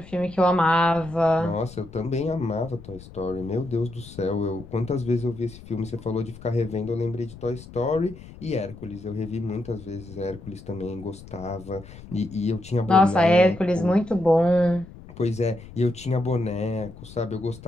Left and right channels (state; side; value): noise; left; rumble, 17 dB below the sound